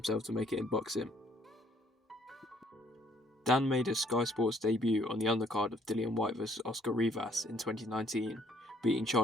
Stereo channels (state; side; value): normal; both; correlation 0.63